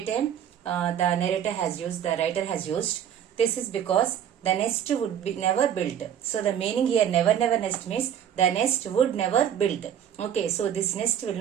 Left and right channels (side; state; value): left; quieter; 9.5 dB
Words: time. The narrator has used, the writer has used. This is because the nest would be never built. So the meaning here, never never nest means the nest would never built. Okay. So this nest will